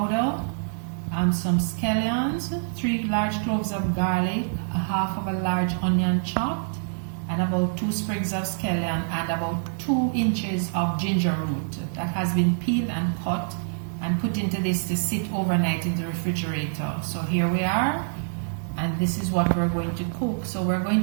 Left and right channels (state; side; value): silent; left; 61 dB below the other